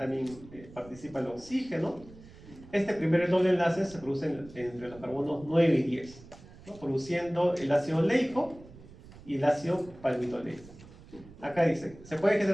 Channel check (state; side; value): noise; right; rumble, 20 dB below the sound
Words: participa el oxígeno. Este primer doble enlace se produce entre los carbonos 9 y 10, ¿no? Produciendo el ácido oleico y el ácido palmitoleico. Acá dice, se puede